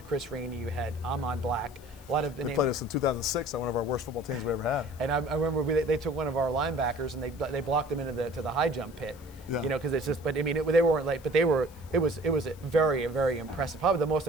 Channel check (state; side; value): noise; left; hiss, 24 dB below the sound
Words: Chris Rainey, you had Ahmad Black. A lot of they played us in 2006 on one of our worst football teams we ever had. And I remember they took one of our linebackers and they blocked him into the high jump pit. Yeah. Because it's just. But I mean, they weren't late. But it was a very, very impressive. Probably the most